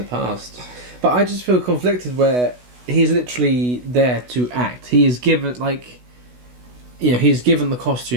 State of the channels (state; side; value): late; left; 16 ms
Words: past. But I just feel conflicted where... He's literally there to act. He is given, he's given the